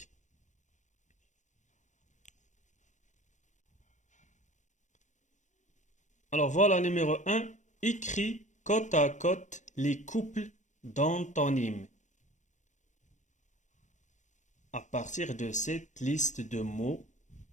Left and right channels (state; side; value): late; right; 0.35 ms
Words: Alors voilà, numéro 1, écris côte à côte les couples d'antonymes. À partir de cette liste de mots,